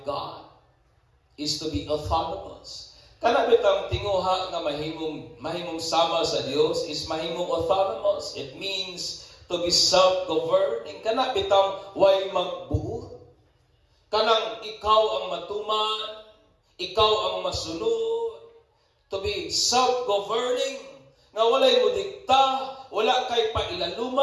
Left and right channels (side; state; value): both; identical; correlation 1.00